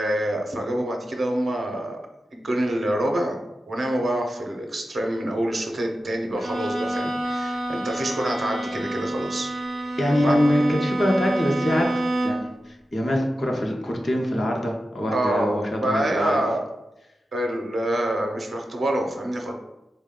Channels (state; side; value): normal; both; correlation 0.92